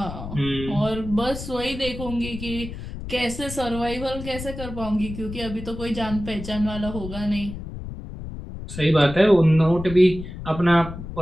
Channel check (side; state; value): left; noise; rumble, 10 dB below the sound